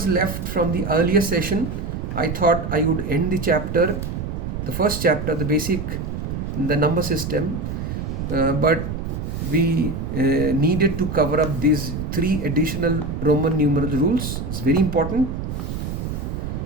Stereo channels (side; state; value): right; noise; rumble, 4 dB below the sound